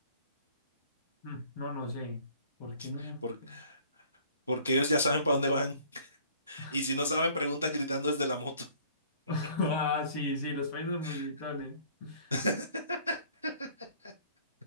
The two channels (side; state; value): both; inverted; correlation -0.55